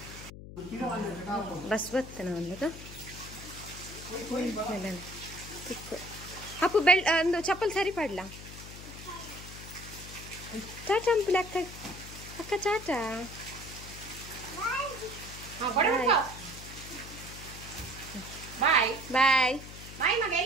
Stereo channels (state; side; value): noise; left; hum, 13 dB below the sound